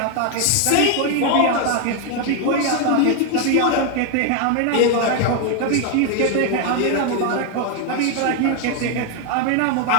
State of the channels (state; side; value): different; both; correlation 0.01